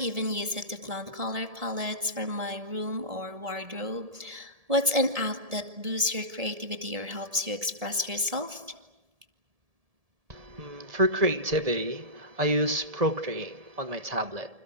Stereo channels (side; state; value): left; late; 1.7 ms